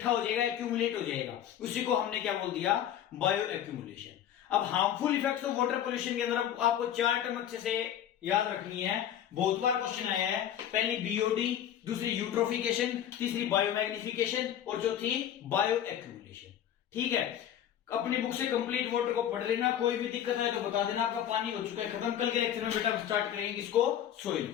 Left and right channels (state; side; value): quieter; right; 10.4 dB